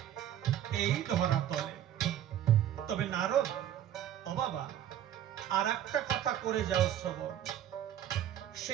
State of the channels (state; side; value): quieter; left; 10.9 dB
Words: এই ধরাতলে। তবে নারদ, ও বাবা, আর একটা কথা করে যাও শ্রবণ।